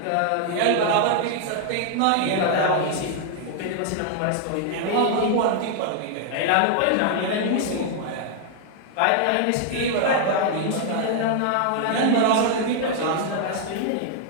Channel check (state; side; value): different; both; correlation 0.00